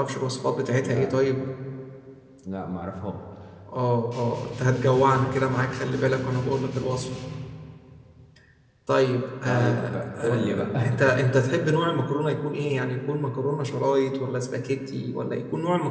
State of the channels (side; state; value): both; identical; correlation 1.00